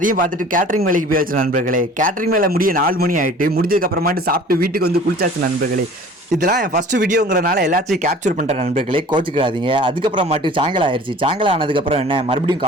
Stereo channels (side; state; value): both; normal; correlation 0.46